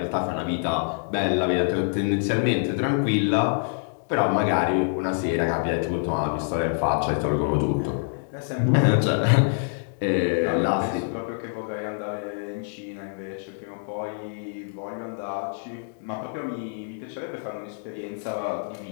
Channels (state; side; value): silent; right; digital silence